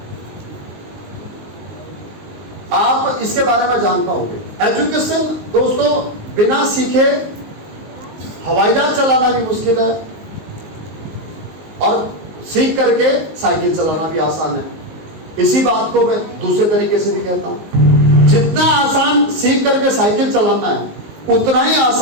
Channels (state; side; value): late; left; 19 ms